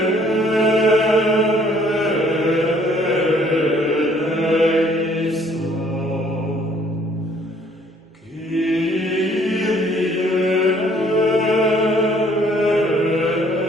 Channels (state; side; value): normal; both; correlation 0.61